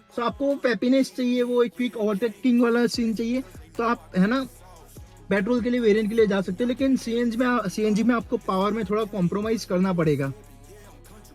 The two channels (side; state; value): both; identical; correlation 1.00